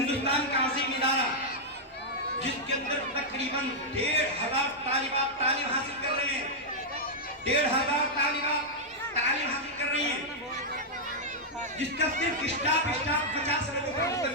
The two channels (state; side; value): normal; both; correlation -0.05